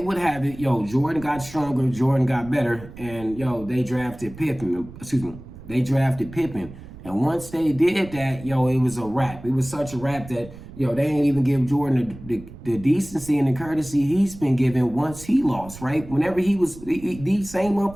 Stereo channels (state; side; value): noise; right; rumble, 16 dB below the sound